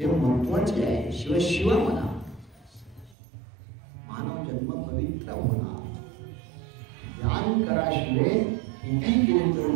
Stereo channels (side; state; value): left; drops out; at 3.2 s